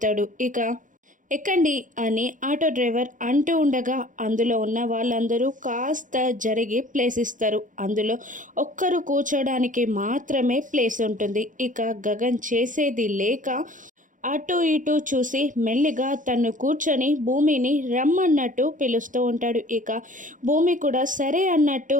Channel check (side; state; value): left; late; 0.38 ms